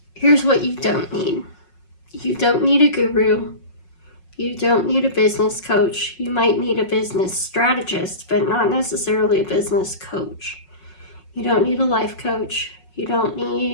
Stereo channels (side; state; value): right; late; 5.5 ms